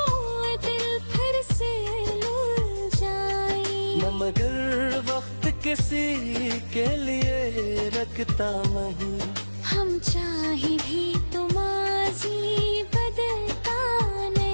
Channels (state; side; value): inverted; both; correlation -1.00